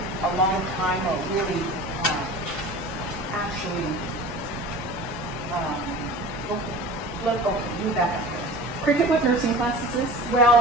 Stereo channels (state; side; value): normal; both; correlation 0.38